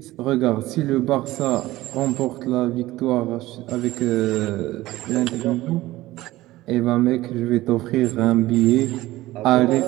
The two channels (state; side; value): quieter; left; 17.2 dB